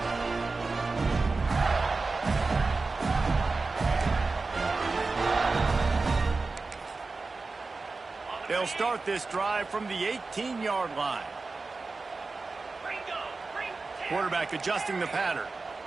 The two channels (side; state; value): left; quieter; 3.9 dB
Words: 18. They'll start this drive from the 18-yard line. Quarterback adjusting the pattern.